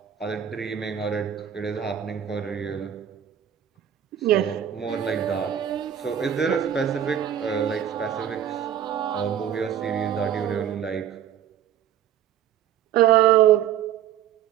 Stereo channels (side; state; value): left; quieter; 9.8 dB